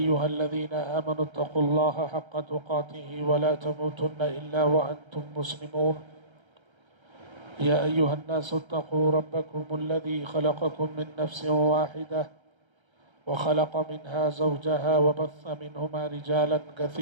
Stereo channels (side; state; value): left; late; 1.3 ms